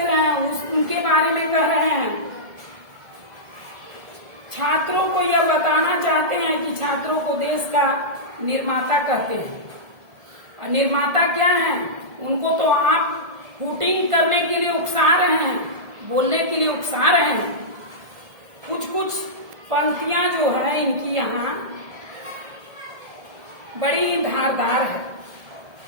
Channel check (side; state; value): left; late; 1.7 ms